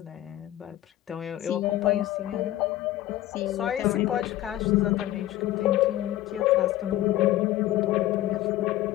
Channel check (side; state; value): right; quieter; 14.7 dB